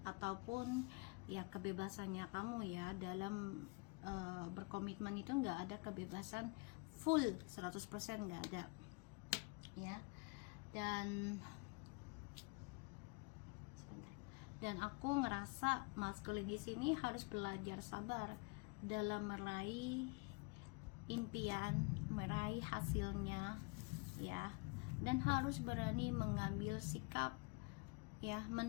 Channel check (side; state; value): right; quieter; 29.8 dB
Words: ataupun ya kebebasannya kamu ya dalam berkomitmen itu nggak ada kebebasan full 100% nggak ada. Ya. Dan aku ngerasa maskulin di sini harus belajar sabar dalam meraih impian, meraih hasilnya ya, dan harus berani mengambil sikap ya,